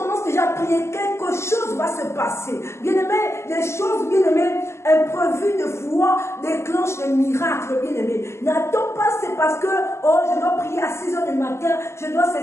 déjà à prier. Quelque chose va se passer. Bien-aimé, les choses, bien-aimé, imprévues de foi déclenchent des miracles, bien-aimé. N'attends pas, c'est parce que, je dois prier à 6 h du matin, je dois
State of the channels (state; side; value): late; right; 0.13 ms